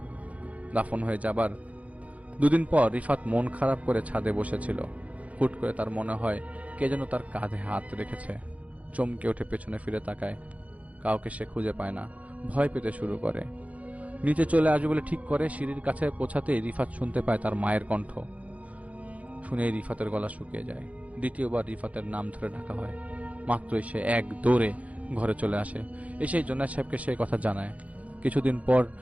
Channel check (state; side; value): late; left; 0.068 ms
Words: দাফন হয়ে যাবার দুদিন পর রিফাত মন খারাপ করে ছাদে বসেছিল। হুট করে তার মনে হয় কে যেন তার কাঁধে হাত রেখেছে। চমকে উঠে পেছনে ফিরে তাকায়, কাউকে সে খুঁজে পায় না। ভয় পেতে শুরু করে। নিচে চলে আসবে বলে ঠিক করে সিঁড়ির কাছে পৌঁছাতেই রিফাত শুনতে পায় তার মায়ের কণ্ঠ। শুনেই রিফাতের গলা শুকিয়ে যায়। দ্বিতীয়বার রিফাতের নাম ধরে ডাকা হয়। মাত্রই সে এক দৌড়ে ঘরে চলে আসে। এসে জোনায়েদ সাহেবকে সেই কথা জানায়। কিছুদিন পর